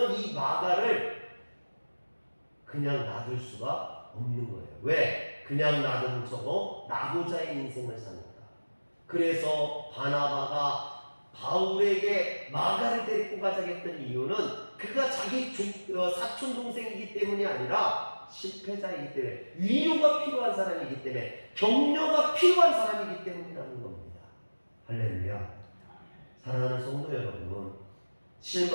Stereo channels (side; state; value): both; inverted; correlation -1.00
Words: 이 마가를 그냥 놔둘 수가 없는 거예요. 왜? 그냥 놔두면 저거 낙오자의 인생을 삽니다. 그래서 바나바가 바울에게 마가를 데리고 가자고 했던 이유는 그가 자기 사촌 동생이기 때문이 아니라 실패자이기 때문에, 위로가 필요한 사람이기 때문에, 격려가 필요한 사람이기 때문이라는 겁니다. 할렐루야. 사랑하는 성도 여러분,